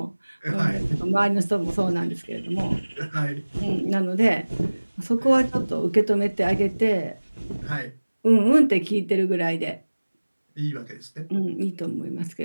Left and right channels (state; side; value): inverted; both; correlation -1.00